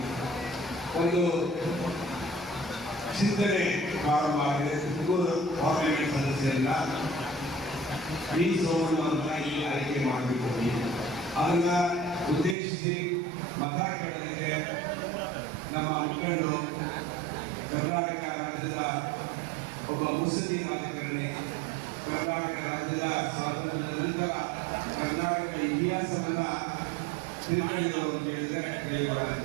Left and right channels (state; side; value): drops out; left; at 12.6 s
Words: ಒಂದು ಚಿಂತನೆ ಪ್ರಾರಂಭ ಆಗಿದೆ. ತುಮಕೂರು ಪಾರ್ಲಿಮೆಂಟ್ ಸದಸ್ಯರನ್ನ ವಿ ಸೋಮಣ್ಣವ್ರನ್ನ ಇಲ್ಲಿ ಆಯ್ಕೆ ಮಾಡಬೇಕು. ಅದನ್ನ ಉದ್ದೇಶಿಸಿ ಮತ ಕೇಳಲಿಕ್ಕೆ ನಮ್ಮ ಮುಖಂಡರು, ಕರ್ನಾಟಕ ರಾಜ್ಯದ ಒಬ್ಬ ಮುಸ್ಲಿಂ ರಾಜಕಾರಣಿ, ಕರ್ನಾಟಕ ರಾಜ್ಯದ ಸ್ವಾತಂತ್ರ್ಯದ ನಂತರ ಕರ್ನಾಟಕ ಇತಿಹಾಸವನ್ನ ತಿಳ್ಕೊಂಡಿದ್ದವರು ಅಂತ ಹೇಳಿದ್ರೆ